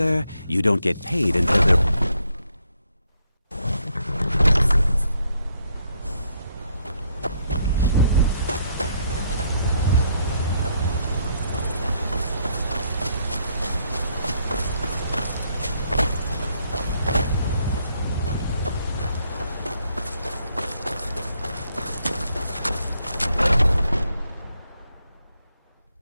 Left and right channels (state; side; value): inverted; both; correlation -0.72